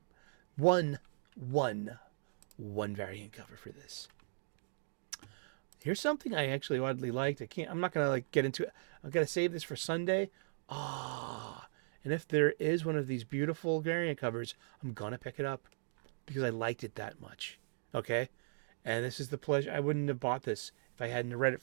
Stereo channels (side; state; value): left; silent; digital silence